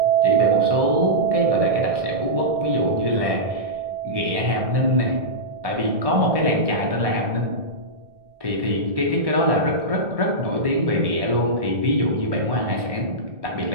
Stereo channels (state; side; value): late; left; 1.1 ms